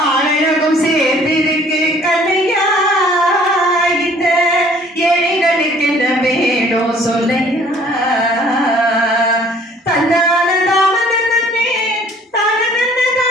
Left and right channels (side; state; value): both; normal; correlation 0.56